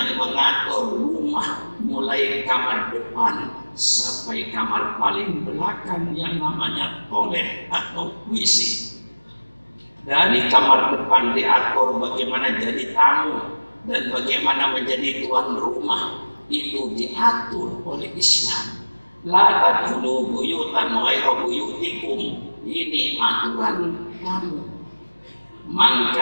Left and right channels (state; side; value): inverted; both; correlation -1.00